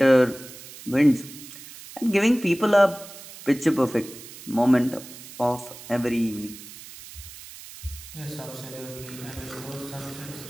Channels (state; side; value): noise; right; hiss, 16 dB below the sound